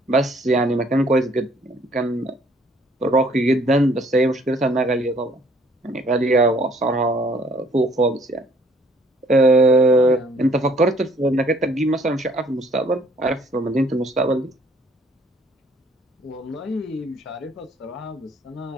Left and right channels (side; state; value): both; normal; correlation 0.61